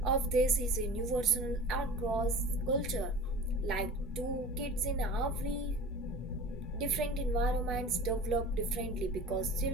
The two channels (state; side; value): normal; both; correlation 0.38